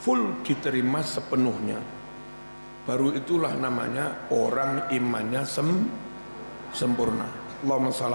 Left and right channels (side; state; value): both; inverted; correlation -1.00